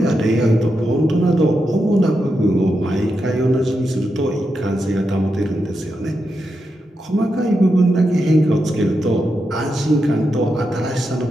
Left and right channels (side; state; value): both; normal; correlation 0.86